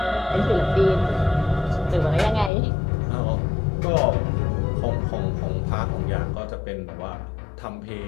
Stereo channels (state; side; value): drops out; right; at 2.5 s